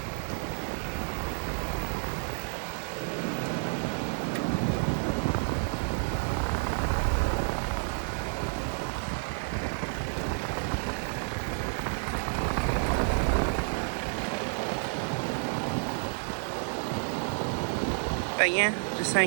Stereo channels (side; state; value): left; silent; 58 dB below the other